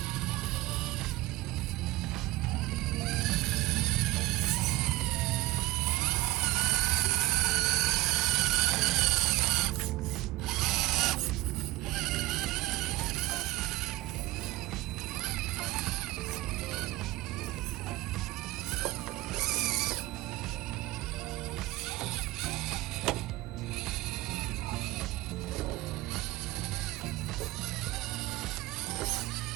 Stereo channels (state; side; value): quieter; left; 18.1 dB